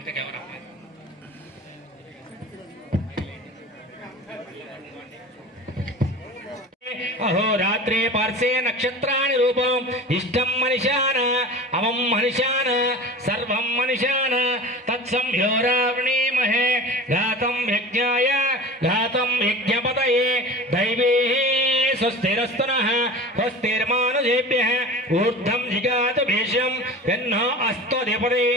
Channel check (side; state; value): both; normal; correlation 0.35